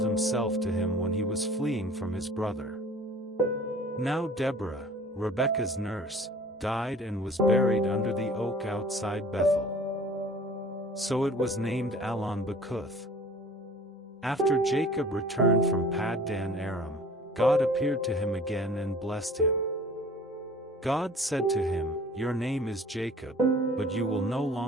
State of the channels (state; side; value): normal; both; correlation 0.47